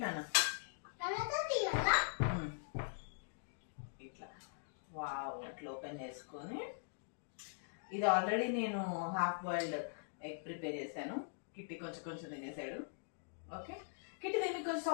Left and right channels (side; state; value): right; silent; digital silence